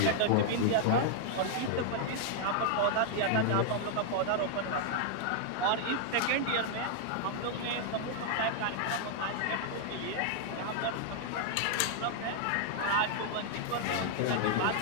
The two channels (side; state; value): both; different; correlation -0.01